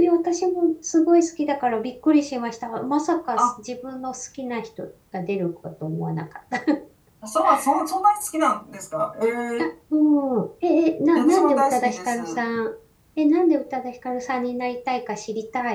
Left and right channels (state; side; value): identical; both; correlation 1.00